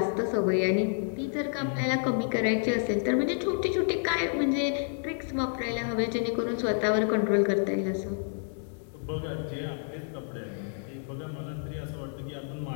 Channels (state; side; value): silent; right; digital silence